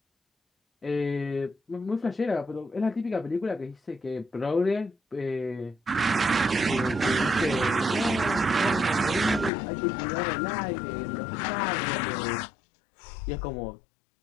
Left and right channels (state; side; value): drops out; right; at 9.5 s